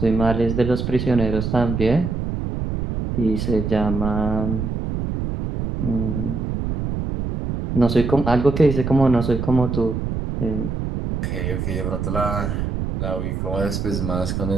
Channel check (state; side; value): noise; right; rumble, 3 dB below the sound